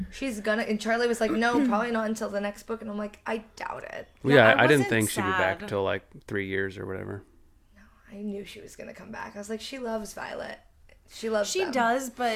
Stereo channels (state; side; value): identical; both; correlation 1.00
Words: And Charlie was like, no, probably not until the next book. And I'm like, I doubt it. Well, yeah, I didn't wasn't think she'd be back sad. till like 3 years or whatever. I knew she was going to come back. I was like, she loves Violet. She loves She them. does,